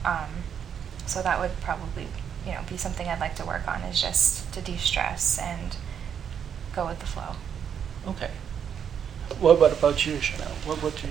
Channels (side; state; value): left; quieter; 8.1 dB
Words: So that would probably, you know, be something I'd like to work on, is just to de-stress and go with the flow. Okay. What about you, Shanel? What would